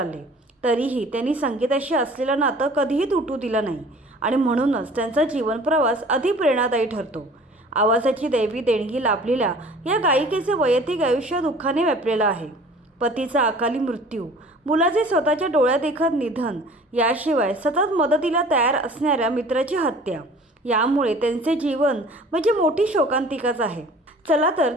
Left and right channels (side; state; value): both; normal; correlation 0.47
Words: तरीही त्यांनी संगीताशी असलेलं नातं कधीही तुटू दिलं नाही आणि म्हणूनच त्यांचा जीवन प्रवास अधिक प्रेरणादायी ठरतो. आवाजाची दैवी देणगी लाभलेल्या या गायिकेचे वैयक्तिक आयुष्य दुःखाने व्यापलेलं आहे. पतीचा अकाली मृत्यू, मुलाचे स्वतःच्या डोळ्यादेखत निधन, याशिवाय सतत मदतीला तयार असणाऱ्या मित्राची हत्या, यामुळे त्यांचे जीवन म्हणजे मोठी शोकांतिकाच आहे. चला तर